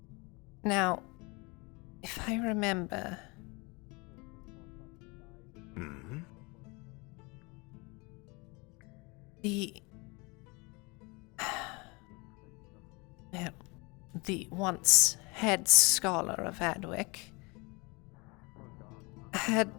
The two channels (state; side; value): quieter; right; 27.4 dB